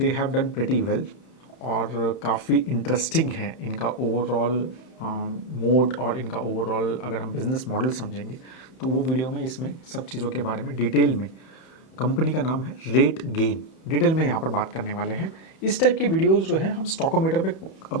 have done pretty well. और काफ़ी इंटरेस्टिंग है इनका ओवरऑल मोड और इनका ओवरऑल अगर हम बिजनेस मॉडल समझेंगे तो वो वीडियो में इसमें सब चीज़ों के बारे में डिटेल में। कंपनी का नाम है रेट गेन, डिटेल में यहाँ पर बात करने वाले हैं। इस टाइप के वीडियोस जो है हम स्टॉकोमीटर पे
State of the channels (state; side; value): late; right; 31 ms